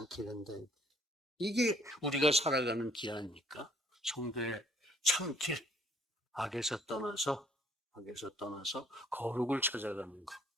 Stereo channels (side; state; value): both; normal; correlation 0.61